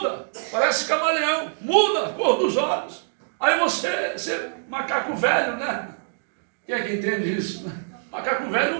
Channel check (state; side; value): silent; left; digital silence